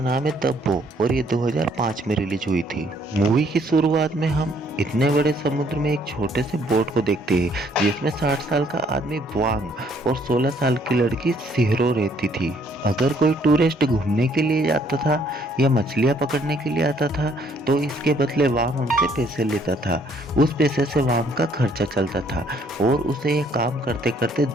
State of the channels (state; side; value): normal; both; correlation 0.65